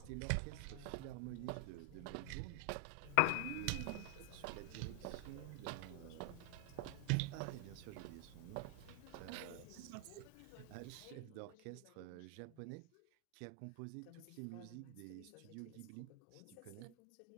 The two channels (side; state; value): both; different; correlation 0.00